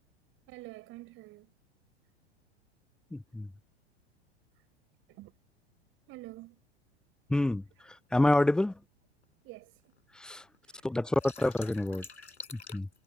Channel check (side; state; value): both; normal; correlation 0.98